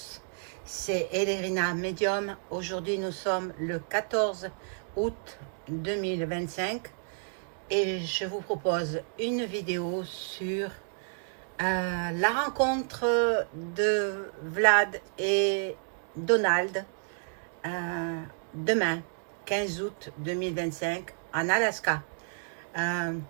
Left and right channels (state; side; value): silent; left; 58 dB below the other